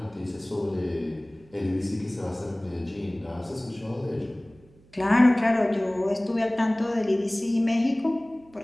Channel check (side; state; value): right; noise; hum, 28 dB below the sound